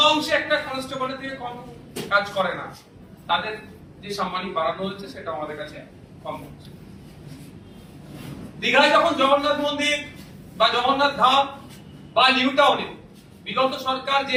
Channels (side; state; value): both; identical; correlation 1.00